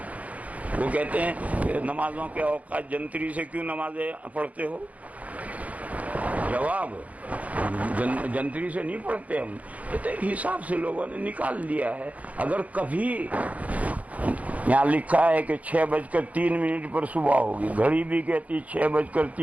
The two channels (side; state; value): left; late; 0.069 ms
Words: وہ کہتے ہیں کہ نمازوں کے اوقات جنتری سے کیوں نمازیں پڑھتے ہو؟ جواب، جنتری سے نہیں پڑھتے ہم، کہتے حساب سے لوگوں نے نکال دیا ہے۔ اگر کبھی یہاں لکھا ہے کہ 6:03 پر صبح ہوگی، گھڑی بھی کہتی